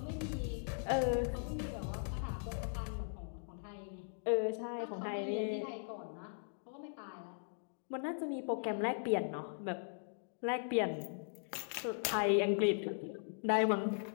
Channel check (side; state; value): right; silent; digital silence